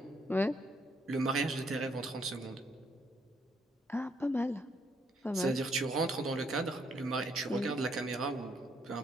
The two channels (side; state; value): both; normal; correlation 0.72